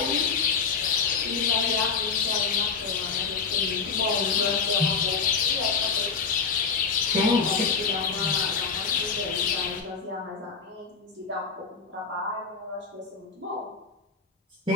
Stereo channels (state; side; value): quieter; right; 5.4 dB